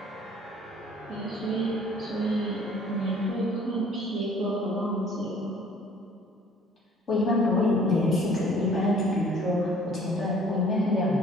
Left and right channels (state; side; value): normal; both; correlation 0.54